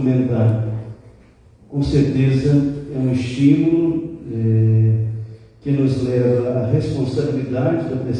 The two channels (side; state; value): both; identical; correlation 1.00